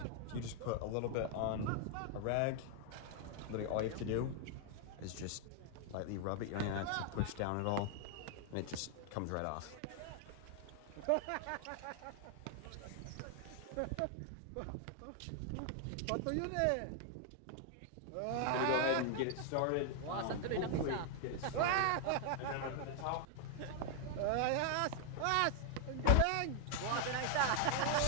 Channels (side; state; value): both; different; correlation 0.00